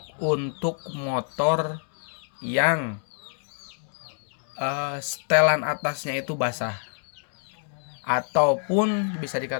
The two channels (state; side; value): silent; right; 60 dB below the other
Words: untuk motor yang setelan atasnya itu basah, ataupun bisa